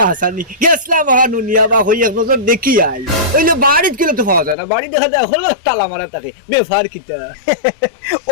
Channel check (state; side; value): drops out; right; at 4.5 s